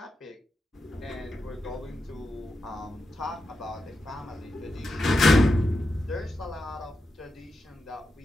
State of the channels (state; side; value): normal; both; correlation 0.88